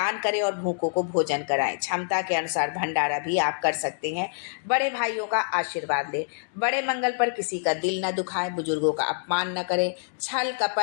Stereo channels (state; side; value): silent; right; digital silence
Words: करें और भूखों को भोजन कराएं। क्षमता के अनुसार भंडारा भी आप कर सकते हैं। बड़े भाइयों का आशीर्वाद लें। बड़े मंगल पर किसी का दिल न दुखाएं, बुजुर्गों का अपमान न करें। छल